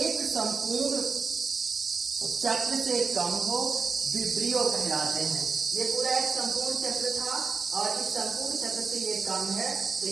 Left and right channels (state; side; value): quieter; left; 4.8 dB